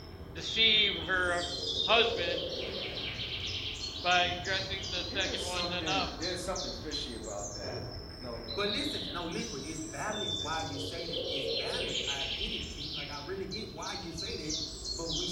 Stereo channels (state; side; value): identical; both; correlation 1.00